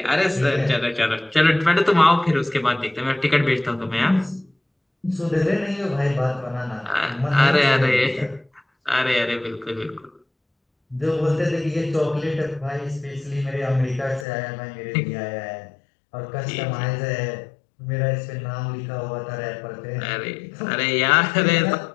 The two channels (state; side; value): drops out; right; at 14.2 s